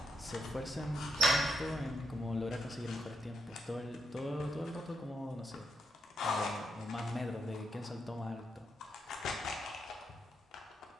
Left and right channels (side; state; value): both; normal; correlation 0.79